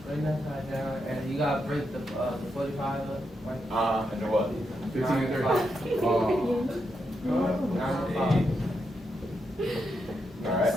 bring that side down, and you gotta break the 45 up, right? And what? 15 and 30. Oh. 905. Alright,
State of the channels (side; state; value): both; normal; correlation 0.83